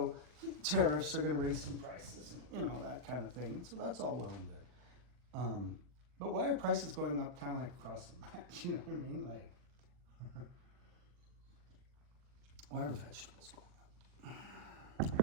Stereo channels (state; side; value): late; left; 40 ms